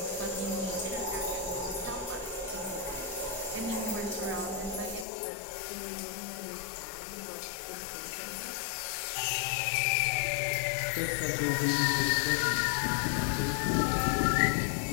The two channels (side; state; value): right; drops out; at 5.1 s